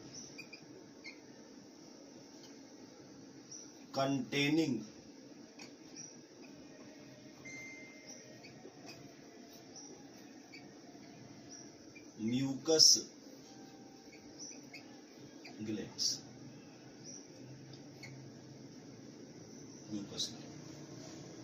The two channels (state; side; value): identical; both; correlation 1.00